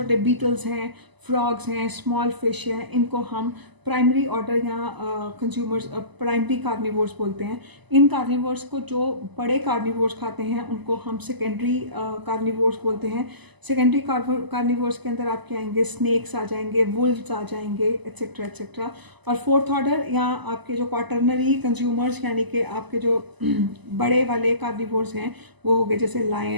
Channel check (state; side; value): late; left; 1.0 ms